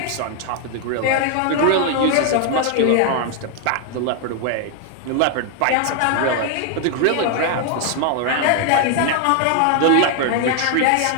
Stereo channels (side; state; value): both; different; correlation 0.00